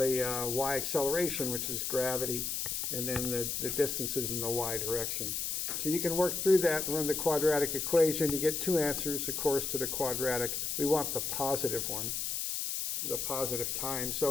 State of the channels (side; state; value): left; noise; hiss, 1 dB below the sound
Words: y acceleration, which is gravity, and then the distances in the y direction. So you can work through that and run the quadratic equation. You get 2 answers, of course, to the quadratic. We want the positive one, the positive time.